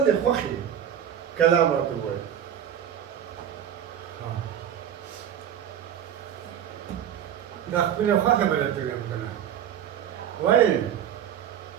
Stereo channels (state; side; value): quieter; left; 9.6 dB